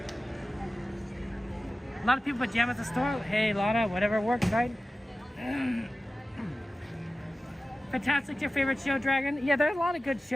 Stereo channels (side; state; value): both; normal; correlation 0.95